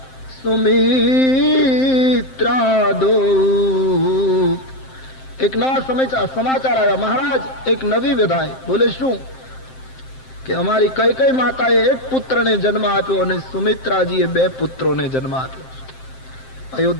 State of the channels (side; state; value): right; late; 7.6 ms